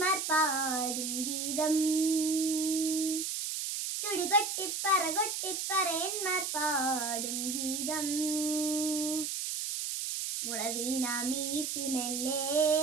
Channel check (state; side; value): noise; right; hiss, 2 dB below the sound